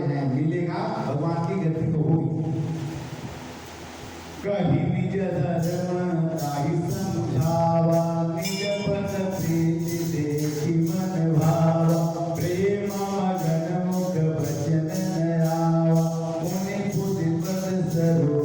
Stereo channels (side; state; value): both; identical; correlation 1.00